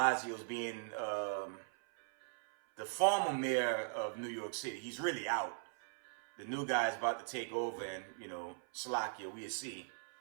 being the former mayor of New York City. He's really out. The new guy's about to take over, and Slovakia, we'll see.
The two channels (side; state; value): left; silent; 51 dB below the other